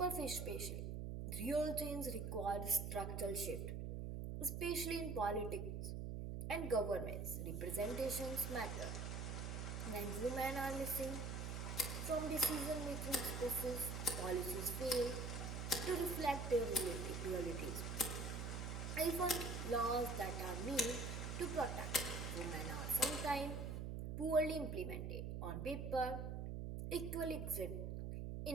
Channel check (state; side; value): noise; right; hum, 3 dB below the sound